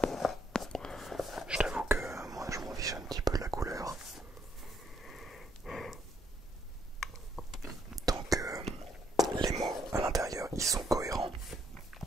Je t'avoue que moi je m'en fiche un petit peu de la couleur. Donc les mots à l'intérieur ils sont cohérents.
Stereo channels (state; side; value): normal; both; correlation 0.71